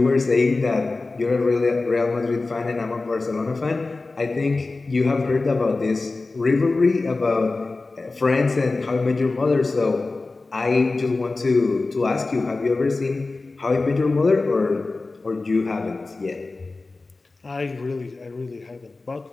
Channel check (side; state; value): right; quieter; 3.5 dB